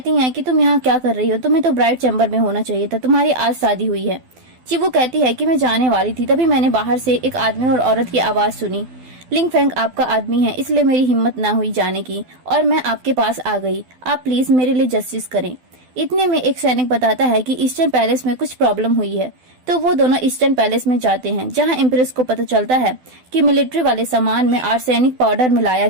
हैं कि तुम यहाँ क्या कर रही हो, तुम्हें तो ब्राइड चैम्बर में होना चाहिए था, तुम्हारी आज शादी हुई है। चीबू कहती है कि मैं जाने वाली थी तभी मैंने बाहर से एक आदमी और औरत की आवाज सुनी। लिंग फैंग आपका आदमी है इसलिए मेरी हिम्मत ना हुई जाने की और मैं आपके पास आ गई, आप प्लीज मेरे लिए जस्टिस करें। इतने में एक सैनिक बताता है कि ईस्टर्न पैलेस में कुछ प्रॉब्लम हुई है, तो वो दोनों ईस्टर्न पैलेस में जाते हैं जहां इम्प्रेस को पता चलता है कि मिलिट्री वाले सामान में आर्सेनिक पाउडर मिलाया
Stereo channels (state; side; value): late; left; 12 ms